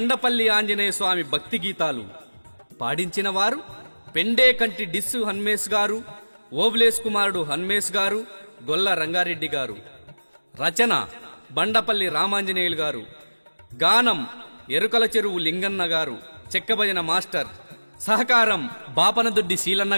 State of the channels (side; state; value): both; inverted; correlation -1.00